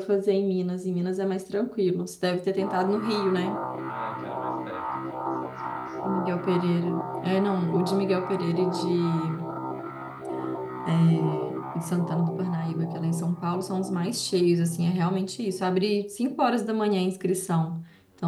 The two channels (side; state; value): both; identical; correlation 1.00